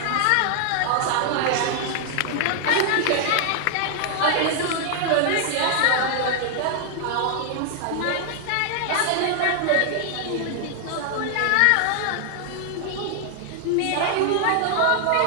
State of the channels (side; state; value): both; different; correlation 0.00